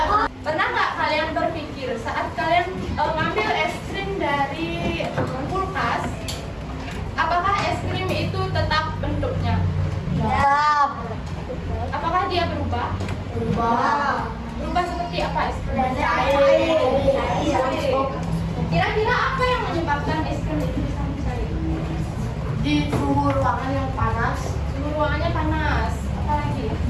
Pernah nggak kalian berpikir saat kalian ngambil es krim dari kulkas, apakah es krim itu tetap bentuknya? Siap. Apakah dia berubah? Berubah. Berubah seperti apa es krim? Dari air. Kira-kira apa yang menyebabkan es krim itu bisa mencair? Di suhu ruangan yang panas. Suhu ruangannya panas. Apalagi?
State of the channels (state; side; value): identical; both; correlation 1.00